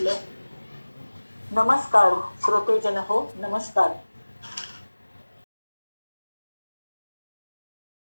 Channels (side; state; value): both; inverted; correlation -1.00